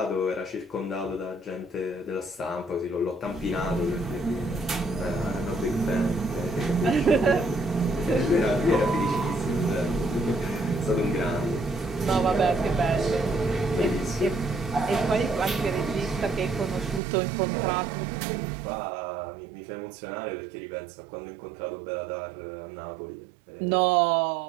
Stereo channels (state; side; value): drops out; left; at 17.0 s